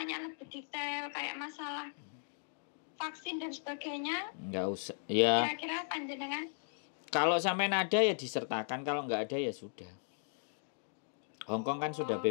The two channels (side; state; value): right; silent; digital silence